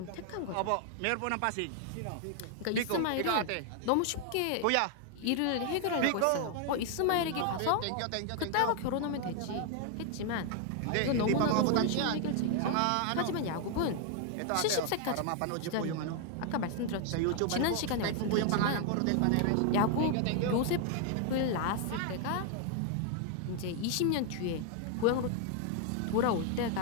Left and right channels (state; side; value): different; both; correlation 0.00